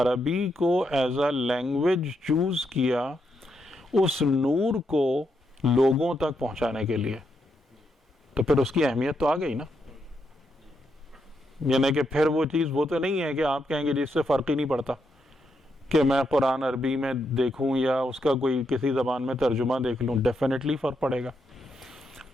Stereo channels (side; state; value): both; normal; correlation 0.81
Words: کو ایز اے لینگویج چوز کیا اس نور کو لوگوں تک پہنچانے کے لیے، تو پھر اس کی اہمیت تو آ گئی نا. یعنی کہ پھر وہ چیز وہ تو نہیں ہے کہ آپ کہیں گے جس سے فرق ہی نہیں پڑتا. کہ میں قرآن عربی میں دیکھوں یا اس کا کوئی کسی زبان میں ترجمہ دیکھ لوں، ڈیفینیٹلی فرق پڑے گا،